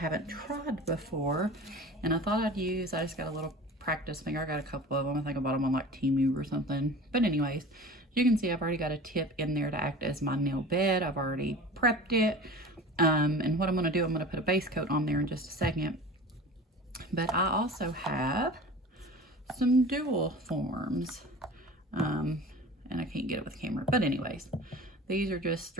tried before, and I thought I'd use, I just got a little practice finger. I got a couple of them. I think I bought them on like Temu or something. But anyways, you can see I've already got a tip in there to act as my nail bed. I've already prepped it. And what I'm going to do, I'm going to put a base coat on there in just a second. But I also have some dual forms. And I can't get it with the camera. But anyways, these are just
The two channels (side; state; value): both; normal; correlation 0.38